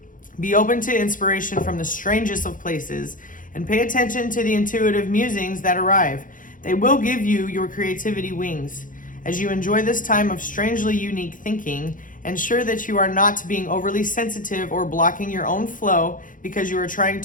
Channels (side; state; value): right; late; 0.39 ms